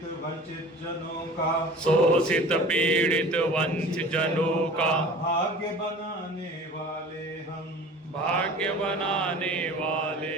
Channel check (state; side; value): normal; both; correlation 0.42